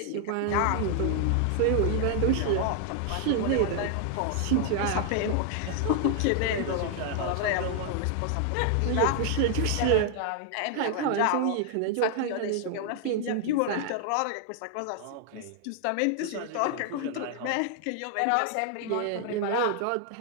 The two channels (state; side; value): different; both; correlation 0.00